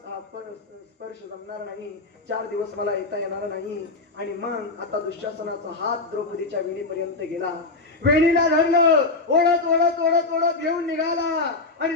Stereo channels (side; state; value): right; quieter; 3.5 dB